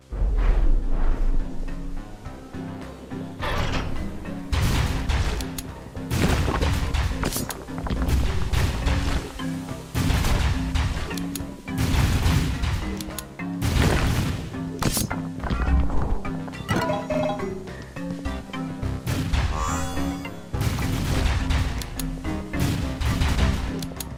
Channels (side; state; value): both; identical; correlation 1.00